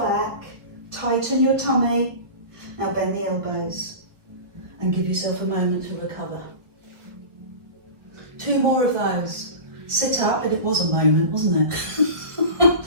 tighten your tummy. Now bend the elbows and give yourself a moment to recover. 2 more of those. Sit up, and it was a moment, wasn't it?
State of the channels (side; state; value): left; late; 1.3 ms